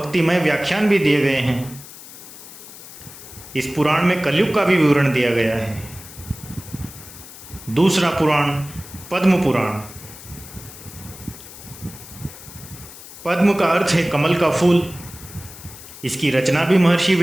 व्याख्यान भी दिए गए हैं। इस पुराण में कलयुग का भी विवरण दिया गया है। दूसरा पुराण पद्म पुराण। पद्म का अर्थ है कमल का फूल। इसकी रचना भी महर्षि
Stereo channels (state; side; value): noise; left; hiss, 16 dB below the sound